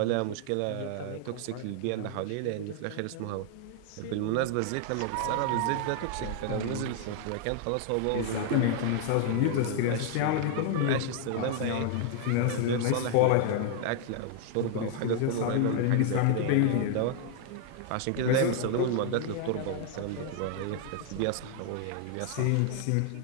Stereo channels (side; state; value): both; different; correlation 0.00